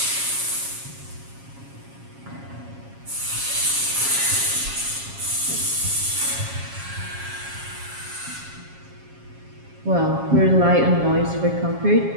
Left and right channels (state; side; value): late; left; 7.4 ms